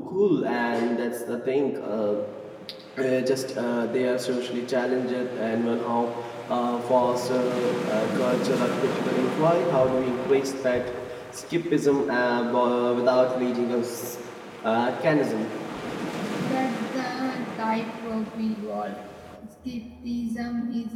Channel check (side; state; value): both; identical; correlation 1.00